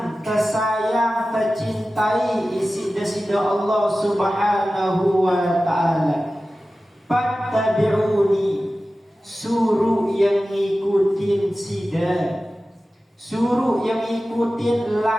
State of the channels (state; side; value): normal; both; correlation 0.95